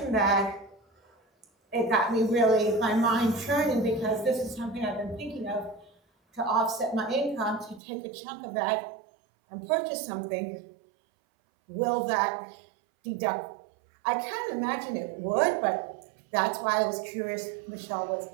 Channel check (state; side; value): drops out; left; at 7.8 s